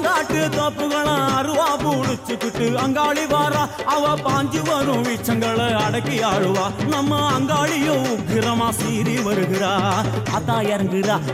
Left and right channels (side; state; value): both; identical; correlation 1.00